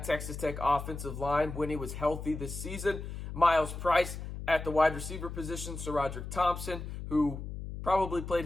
Texas Tech offensive line when he was healthy this season. Myles Price at the wide receiver position. SaRodorick Thompson, who probably played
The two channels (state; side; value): noise; left; hum, 8 dB below the sound